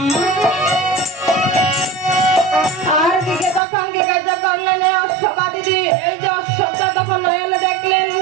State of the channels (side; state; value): left; drops out; at 3.6 s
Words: আর দিকে তখন জিজ্ঞাসা করলেন, এই যে অশ্ব